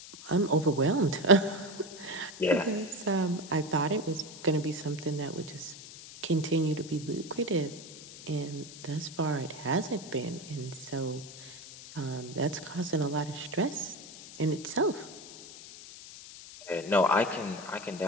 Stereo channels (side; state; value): left; noise; hiss, 15 dB below the sound